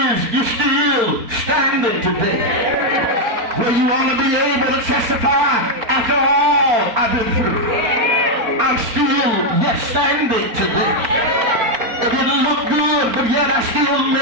you're still standing today. Where you want to be able to testify after all I've been through. I'm still yet standing today. It didn't look good, but yet I still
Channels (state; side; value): late; left; 4.4 ms